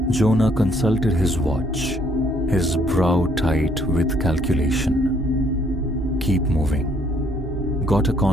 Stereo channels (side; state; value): both; normal; correlation 0.66